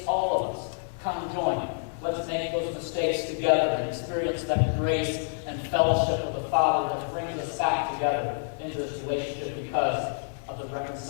all of us. Come join. Let's make those mistakes together and experience that grace and fellowship of the Father that brings us back together into this relationship because of the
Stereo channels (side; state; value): right; silent; digital silence